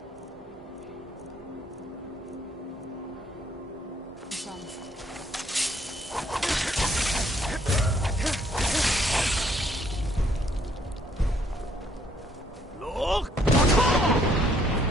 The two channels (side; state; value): both; normal; correlation 0.67